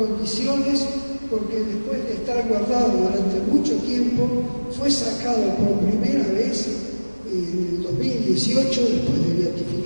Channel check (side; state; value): both; inverted; correlation -1.00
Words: porque después de estar guardado durante mucho tiempo, fue sacado por primera vez en el 2018, después de